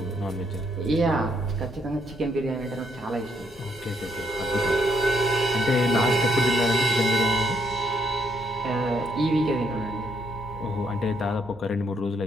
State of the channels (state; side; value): normal; both; correlation 0.72